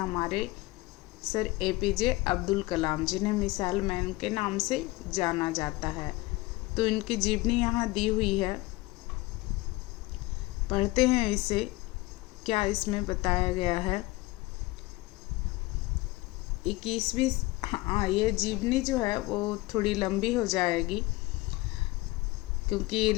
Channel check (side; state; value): right; quieter; 21.1 dB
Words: हमारे सर APJ अब्दुल कलाम, जिन्हें मिसाइल मैन के नाम से जाना जाता है। तो इनकी जीवनी यहाँ दी हुई है, पढ़ते हैं इसे। क्या इसमें बताया गया है 21वीं। हाँ, ये जीवनी जो है वो थोड़ी लंबी हो जाएगी